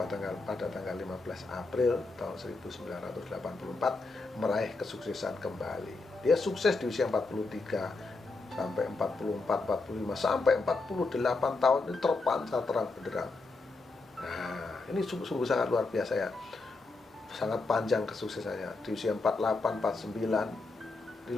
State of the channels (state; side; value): quieter; right; 3.6 dB